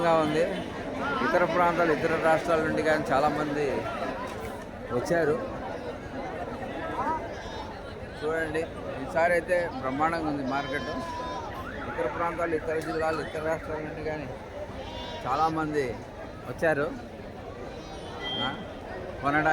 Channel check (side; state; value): both; identical; correlation 1.00